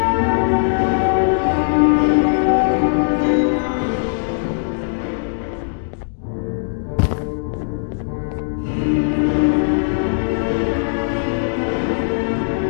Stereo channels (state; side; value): silent; right; digital silence